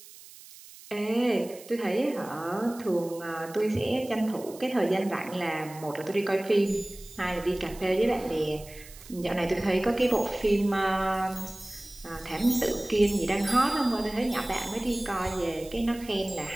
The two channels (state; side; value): noise; right; hiss, 19 dB below the sound